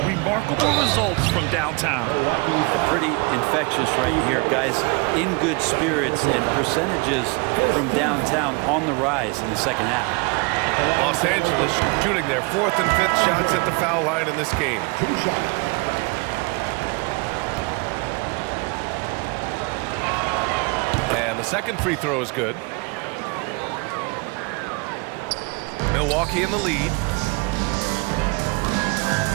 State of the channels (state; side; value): quieter; left; 29.6 dB